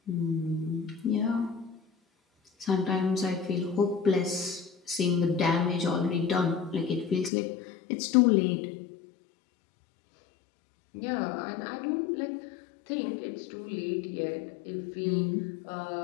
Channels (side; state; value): right; drops out; at 7.3 s